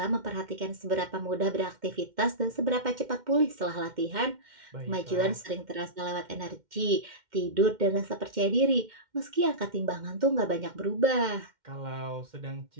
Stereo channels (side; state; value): left; late; 2.1 ms